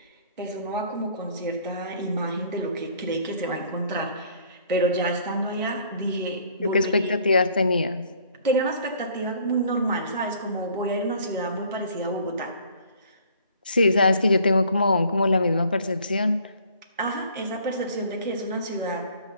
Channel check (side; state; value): both; inverted; correlation -0.57